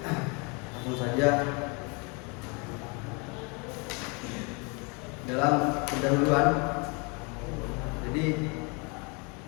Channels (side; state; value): right; quieter; 31.8 dB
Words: Langsung saja, dalam pendahuluan, jadi